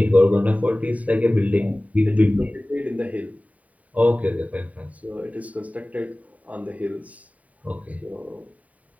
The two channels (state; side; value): late; left; 0.070 ms